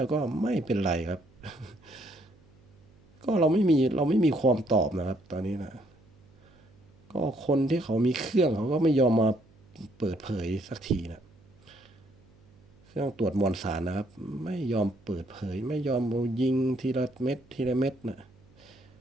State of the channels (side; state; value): right; noise; hum, 29 dB below the sound